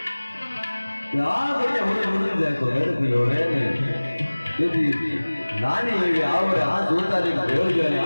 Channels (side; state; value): both; inverted; correlation -1.00